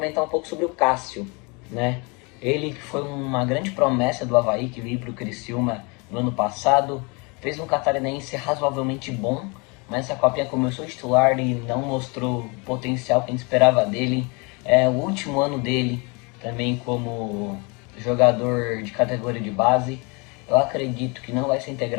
um pouco sobre o Cássio, né? Ele que foi uma grande promessa do Avaí, que veio para o Criciúma no ano passado, fez um catarinense razoavelmente bom, mas essa copinha começou titular e não mostrou o potencial que a gente esperava dele. É o último ano dele também como jogador de categoria de base. Eu acredito que não vai ser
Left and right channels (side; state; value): right; quieter; 30.2 dB